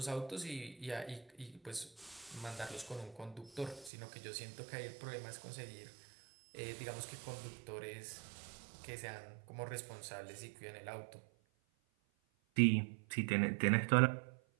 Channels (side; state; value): left; drops out; at 3.9 s